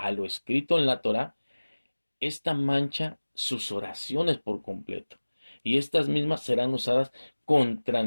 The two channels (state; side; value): inverted; both; correlation -1.00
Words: lo escrito en la Torá, esta mancha sus oraciones por completo. Y estas mismas serán usadas contra